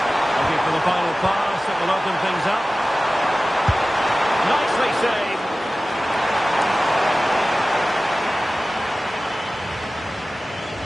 Looking for the final pass that will open things up. Nicely saved.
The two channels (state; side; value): normal; both; correlation 0.96